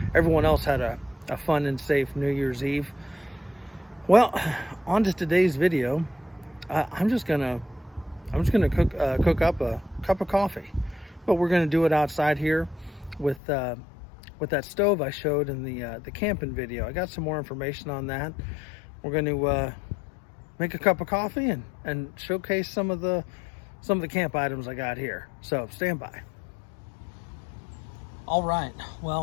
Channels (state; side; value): drops out; right; at 13.4 s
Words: everyone else had a fun and safe New Year's Eve. Well, on to today's video. I'm just gonna cook up a cup of coffee, but we're gonna do it outside here with that stove I showed in the camping video. I got some more information on that. We're going to make a cup of coffee and showcase some of the camp items I got here. So stand by. All right,